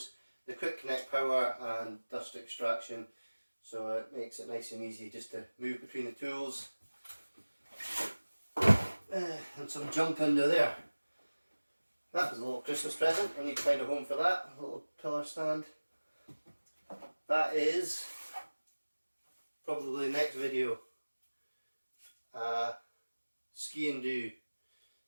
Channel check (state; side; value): inverted; both; correlation -1.00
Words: the quick connect power and dust extraction, so it makes it nice and easy just to move between the tools. And some junk under there. That was a little Christmas present. I need to find a home for that. A little pillar stand. That is probably the next video. Ski and do.